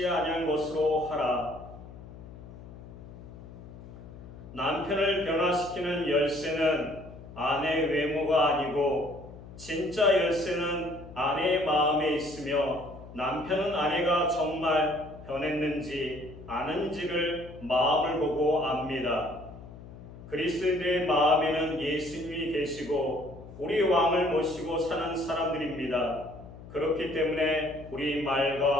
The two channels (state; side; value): noise; left; hum, 16 dB below the sound